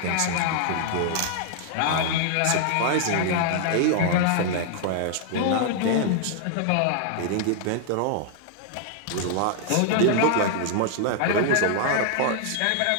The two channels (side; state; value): both; different; correlation -0.01